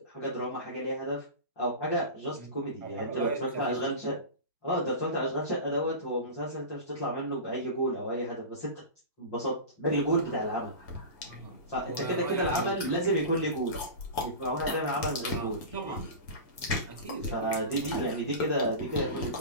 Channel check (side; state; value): right; late; 1.9 ms